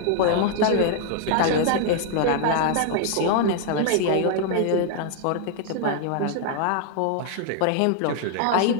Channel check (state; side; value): different; both; correlation 0.00